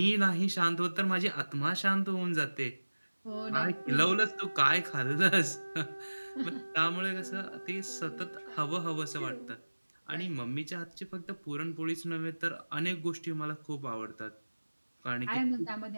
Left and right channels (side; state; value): both; inverted; correlation -1.00